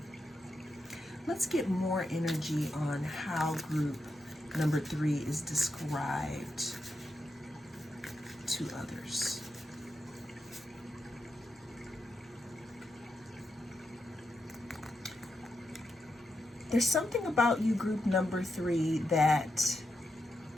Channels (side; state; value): both; normal; correlation 0.85